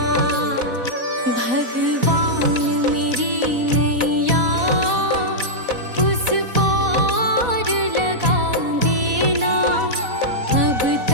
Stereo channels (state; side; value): late; left; 4.1 ms